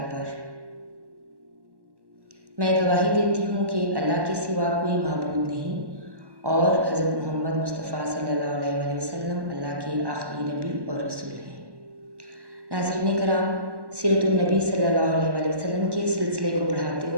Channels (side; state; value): left; late; 1.1 ms